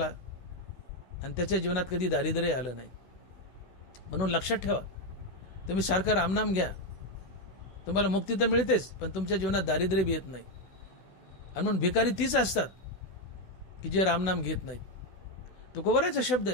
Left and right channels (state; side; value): late; right; 16 ms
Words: आणि त्याच्या जीवनात कधी दारिद्र्य आलं नाही. म्हणून लक्षात ठेवा, तुम्ही सारखं रामनाम घ्या, तुम्हाला मुक्ती तर मिळतेच, पण तुमच्या जीवनात दारिद्र्य बी येत नाही. आणि म्हणून भिकारी तीच असतात की जे रामनाम घेत नाहीत. तुकोबराचा शब्द